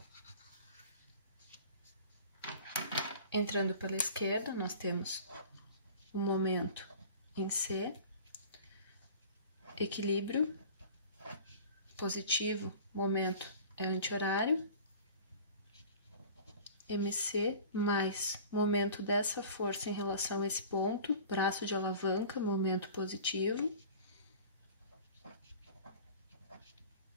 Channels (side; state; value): both; inverted; correlation -0.42